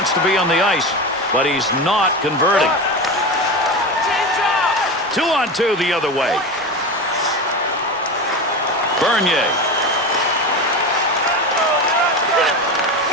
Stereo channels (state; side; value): noise; right; rumble, 29 dB below the sound